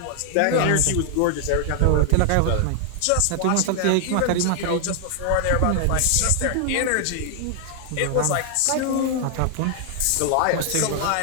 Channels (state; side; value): different; both; correlation 0.00